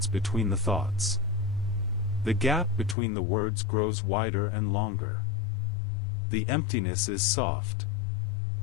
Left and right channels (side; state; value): right; drops out; at 3.0 s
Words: between the thoughts. The gap between the words grows wider and longer. The emptiness is soft.